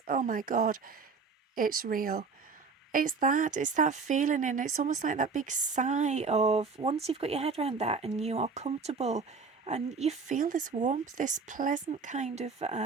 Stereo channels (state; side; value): quieter; left; 4.9 dB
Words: oh my God, it's real. It's that feeling, and it's almost like that big sigh of, once you've got your head around that and you are comfortable and you feel this warmth, this pleasant kind of